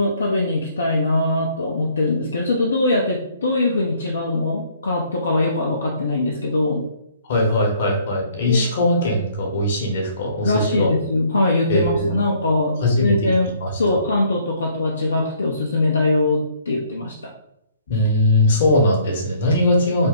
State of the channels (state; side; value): inverted; both; correlation -0.62